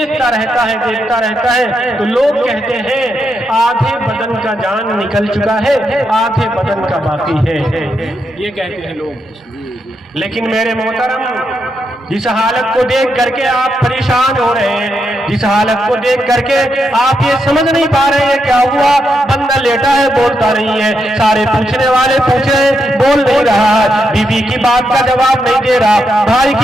रहता है। तो लोग कहते हैं आधे बदन का जान निकल चुका है, आधे बदन का बाकी है, ये कहते हैं लोग। लेकिन मेरे मोहतरम, जिस हालत को देख करके आप परेशान हो रहे हैं, जिस हालत को देख करके आप ये समझ नहीं पा रहे हैं क्या हुआ, बंदा लेटा है बोलता नहीं है, सारे पूछने वाले पूछ रहे हैं बोल नहीं रहा, बीवी की बात का जवाब नहीं दे रहा, भाई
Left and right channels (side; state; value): both; normal; correlation 0.82